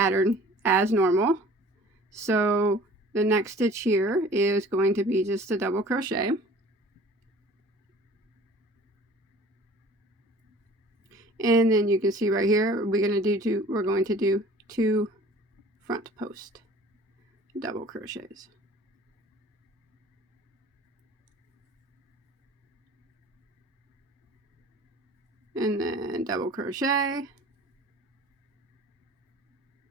as normal. So the next stitch here is going to be just a double crochet. And then you can see right here, we're going to do 2 front post double crochets. And then double crochet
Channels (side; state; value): both; normal; correlation 0.47